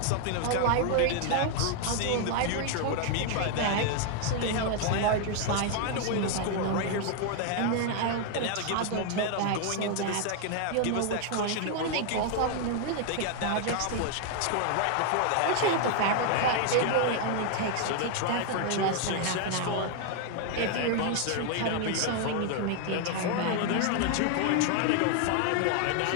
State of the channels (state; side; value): different; both; correlation 0.00